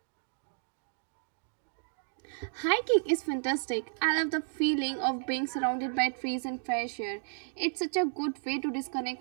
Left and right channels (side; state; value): left; silent; digital silence